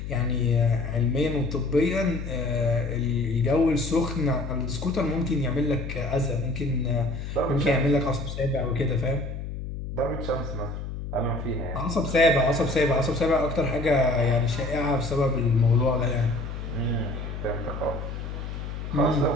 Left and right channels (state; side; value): noise; left; hum, 7 dB below the sound